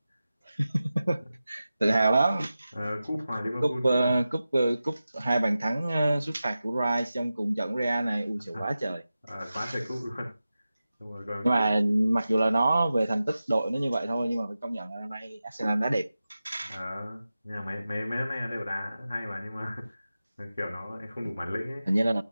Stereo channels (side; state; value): both; inverted; correlation -0.94